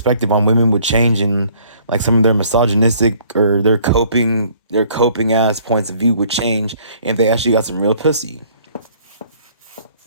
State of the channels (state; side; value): inverted; both; correlation -0.59